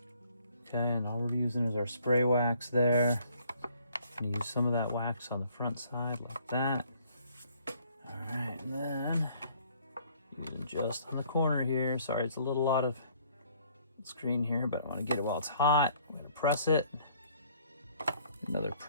Okay, and all we're using is our spray wax there. I'm going to use some of that wax on the front side like that. All right, and then using just on the corner here. Sorry, it's a little out of screen here, but I want to get it while it's hot. I'm going to press it. Another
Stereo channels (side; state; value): both; inverted; correlation -0.61